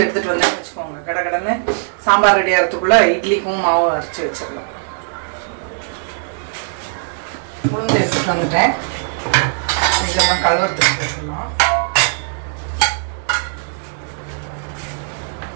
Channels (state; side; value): silent; left; digital silence